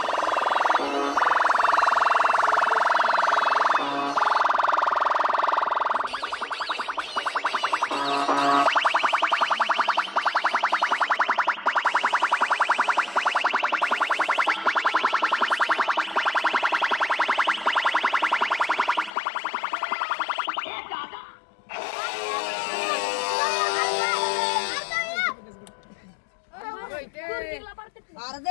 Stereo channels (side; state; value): right; drops out; at 19.2 s